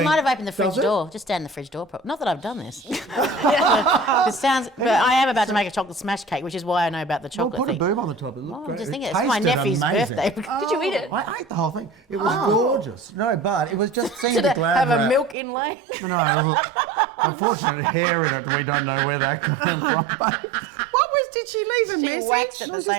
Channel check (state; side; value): drops out; left; at 15.4 s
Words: might have opened the fridge "Does it?" door, just down the fridge door. Not that I've done this. It sounds. But I am about to make a chocolate smash cake, which is why I know about the Well, chocolate put a thing. boob on the top. It looked Oh, I'm great. just It thinking, it's my tasted nephew's amazing. birthday. Did you eat it? I ate the whole thing. It was gorgeous. No, but it was just seeing Did the it Glad have wrap. a milk inlay? No, unfortunately, hair in it. We don't know where that came from. But Did she leave a She message? waxed at the